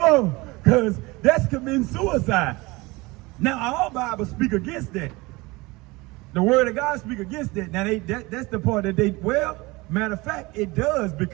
on, because that's committing suicide. Now, our Bible speak against that. The word of God speak against that. Now, that's the part that matter of fact, it does,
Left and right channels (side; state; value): left; quieter; 23.0 dB